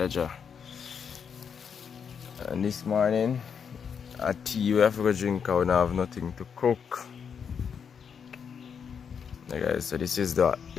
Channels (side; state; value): right; quieter; 6.9 dB